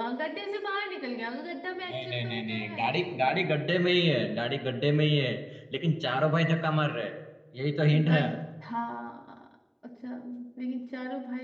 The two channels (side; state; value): both; identical; correlation 1.00